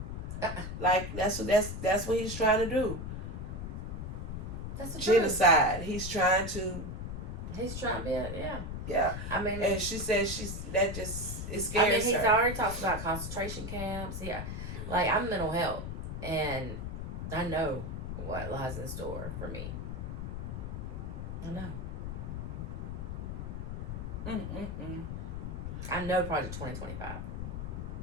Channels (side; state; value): left; noise; rumble, 5 dB below the sound